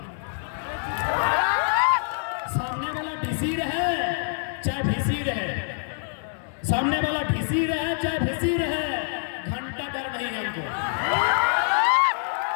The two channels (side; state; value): right; silent; 61 dB below the other